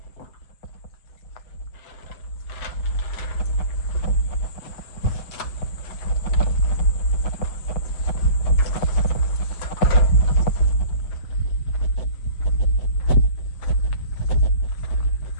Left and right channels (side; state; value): right; late; 7.7 ms